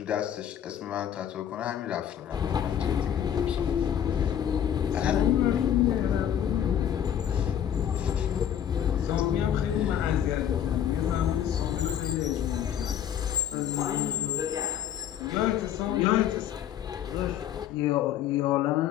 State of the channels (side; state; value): right; quieter; 9.8 dB